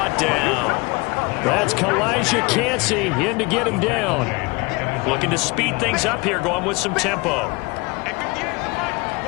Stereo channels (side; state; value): right; quieter; 25.8 dB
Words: down. That's Kalijah Cansey in to get him down. Looking to speed things up here, going with some tempo.